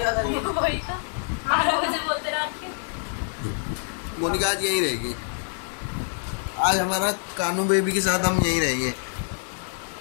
मोनिका आज यहीं रहेगी। आज हमारा कानू बेबी के साथ हम यहीं रहेंगे।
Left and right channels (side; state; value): right; silent; 61 dB below the other